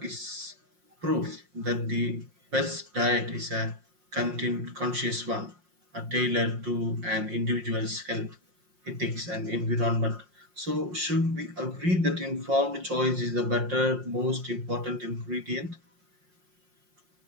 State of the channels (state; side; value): late; left; 5.6 ms